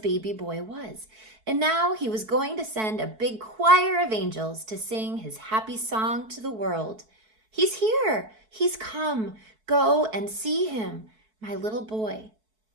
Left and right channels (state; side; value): late; left; 4.6 ms